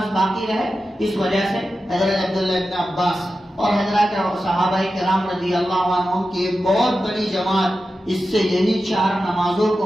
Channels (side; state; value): both; normal; correlation 0.92